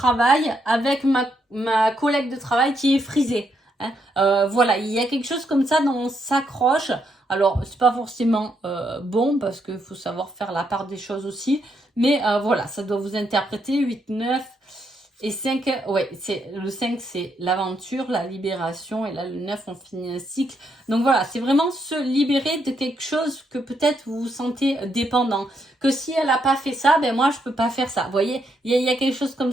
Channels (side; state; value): both; normal; correlation 0.77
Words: avec ma collègue de travail qui est frisée. Hein. Voilà, il y a quelque chose comme ça dont on s'accroche. Alors, c'est pas forcément bon parce qu'il faut savoir faire la part des choses aussi. Mais voilà, ça doit vous interpréter 8, 9 et 5. Ouais, le 5, c'est l'aventure, la libération. Et là, le 9, on finit un cycle. Donc voilà, c'est vraiment se libérer de quelque chose que peut-être vous vous sentez dépendant. Que si elle n'a pas fait ça, moi, je peux pas faire ça. Vous voyez, il y a quelque chose comme